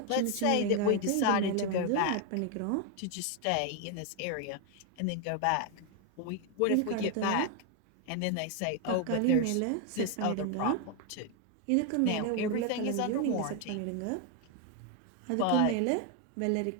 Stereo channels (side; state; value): both; different; correlation 0.01